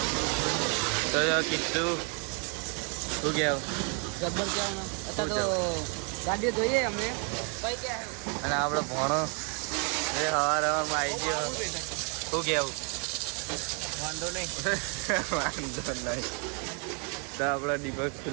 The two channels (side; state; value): left; quieter; 37.6 dB